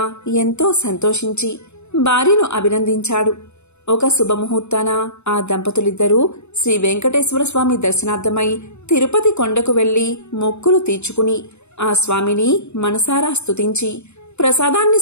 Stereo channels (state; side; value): late; right; 0.81 ms